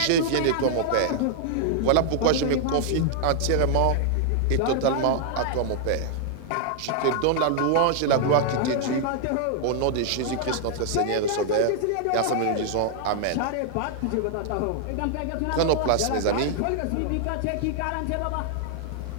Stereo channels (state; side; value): different; both; correlation -0.01